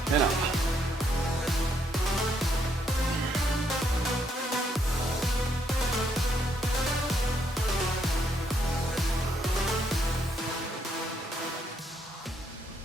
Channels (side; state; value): both; normal; correlation 0.73